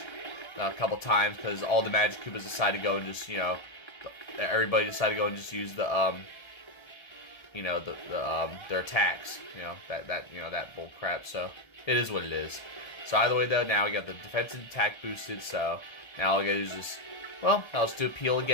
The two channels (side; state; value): right; late; 1.3 ms